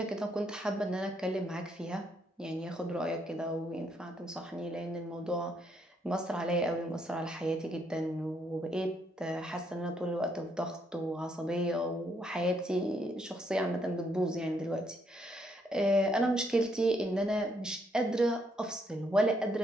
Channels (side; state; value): both; normal; correlation 0.73